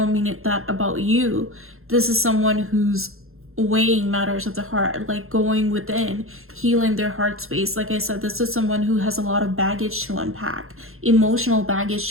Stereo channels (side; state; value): left; late; 0.61 ms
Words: mean it that about you. This is someone who's weighing matters of the heart, like going within, healing their heart space. Like I said, this is someone who has a lot of baggage to unpack, emotional baggage